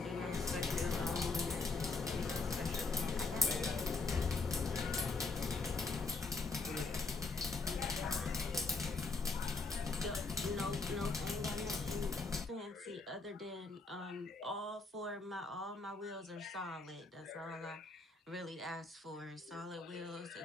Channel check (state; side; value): quieter; right; 3.8 dB